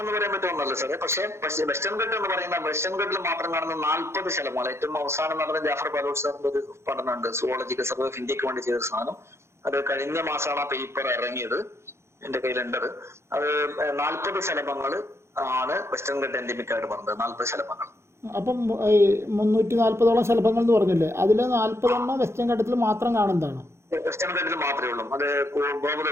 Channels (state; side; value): late; left; 0.13 ms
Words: എന്ന് പറയാൻ പറ്റുമെന്നല്ല സാറേ. പക്ഷേ വെസ്റ്റേൺ ഘട്ടം എന്ന് പറയുന്ന വെസ്റ്റേൺ ഘട്ടിൽ മാത്രം കാണുന്ന 40 ശലഭങ്ങൾ. ഏറ്റവും അവസാനം നടന്ന ജാഫർ ബാലൂർ സാറിന്റെ ഒരു പഠനമുണ്ട്, സുവോളജിക്കൽ സർവേ ഓഫ് ഇന്ത്യക്ക് വേണ്ടി ചെയ്ത സാധനം. അത് കഴിഞ്ഞ മാസമാണ് ആ പേപ്പർ ഇറങ്ങിയത്, എന്റെ കയ്യിലുണ്ടത്. അത് 40 ശലഭങ്ങൾ ആണ് വെസ്റ്റേൺ ഘട്ട എൻഡിമിക് ആയിട്ട് പറഞ്ഞത്. 40 ശലഭങ്ങൾ. അപ്പം ഈ 340ഓളം ശലഭങ്ങൾ എന്ന് പറഞ്ഞില്ലേ, അതിൽ 40 വെസ്റ്റേൺ ഘട്ടത്തിൽ മാത്രം കാണുന്നതാണ്? വെസ്റ്റേൺ ഘട്ടത്തിൽ മാത്രമേ ഉള്ളൂ. അത്